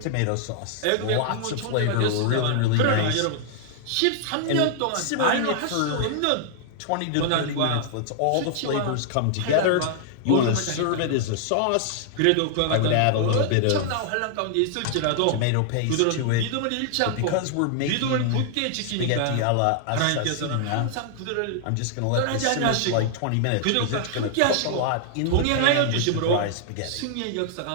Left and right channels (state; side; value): different; both; correlation -0.01